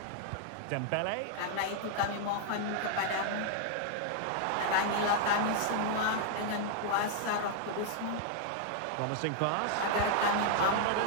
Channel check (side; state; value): both; different; correlation 0.00